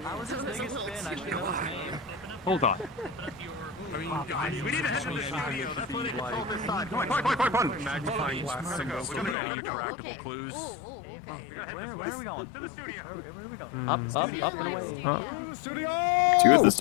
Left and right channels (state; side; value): drops out; right; at 9.3 s